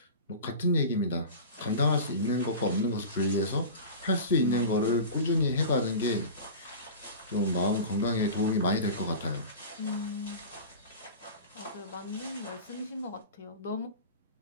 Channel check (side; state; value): both; inverted; correlation -0.33